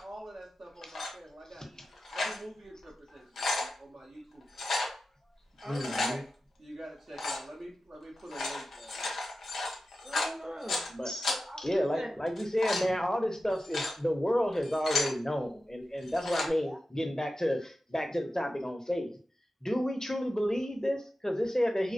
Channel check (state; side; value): normal; both; correlation 0.93